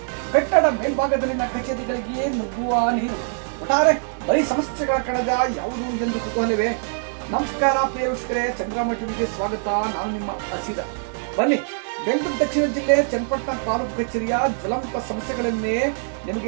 ಕಟ್ಟಡ ಮೇಲ್ಭಾಗದಲ್ಲಿನ ಕಚೇರಿಗಳಿಗೆ ನುಗ್ಗುವ ನೀರು. ಒಟ್ಟಾರೆ ಬರೀ ಸಮಸ್ಯೆಗಳ ಕಣಜ ಯಾವುದು ಎಂದು ಕುತೂಹಲವೇ? ನಮಸ್ಕಾರ ಪ್ರಿಯ ವೀಕ್ಷಕರೇ, ಸಂಗ್ರಾಮ ಟಿವಿಗೆ ಸ್ವಾಗತ. ನಾನು ನಿಮ್ಮ ಹಸಿರ. ಬನ್ನಿ, ಬೆಂಗಳೂರು ದಕ್ಷಿಣ ಜಿಲ್ಲೆ ಚನ್ನಪಟ್ಟಣ ತಾಲೂಕು ಕಚೇರಿಯ ಜ್ವಲಂತ ಸಮಸ್ಯೆಗಳನ್ನೇ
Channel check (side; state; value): left; silent; 63 dB below the other